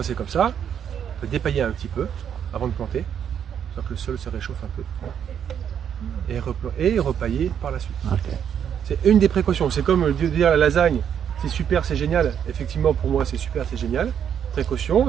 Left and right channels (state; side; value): quieter; left; 8.6 dB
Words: c'est comme ça, on peut dépailler un petit peu avant de planter, soit que le sol se réchauffe un peu. Et repailler par la suite. Ok. C'est une des précautions. C'est comme dire la lasagne, c'est super, c'est génial. Effectivement, pour moi, c'est super, c'est génial.